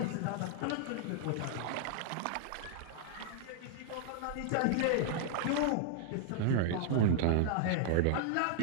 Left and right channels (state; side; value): different; both; correlation -0.01